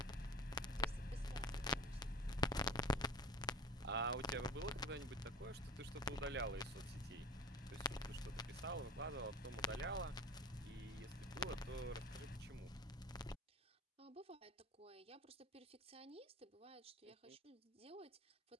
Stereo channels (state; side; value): normal; both; correlation 0.36